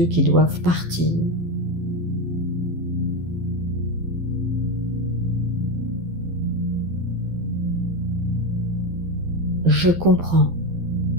qui doivent partir. Je comprends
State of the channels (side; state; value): left; late; 12 ms